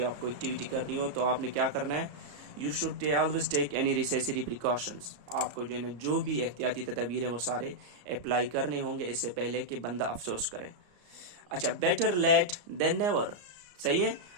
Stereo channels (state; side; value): late; left; 34 ms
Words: आपको एक्टिविटी करनी हो, तो आपने क्या करना है? You should always take any necessary precautions. आपको जो है ना जो भी एहतियाती तदबीर है वो सारे अप्लाई करने होंगे इससे पहले कि बंदा अफसोस करे। अच्छा, बेटर लेट देन नेवर। सही है।